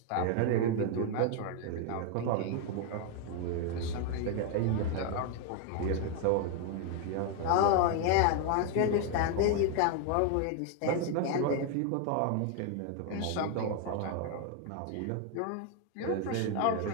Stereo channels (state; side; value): different; both; correlation 0.01